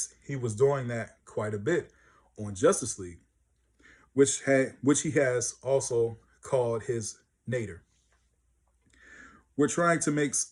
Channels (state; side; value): identical; both; correlation 1.00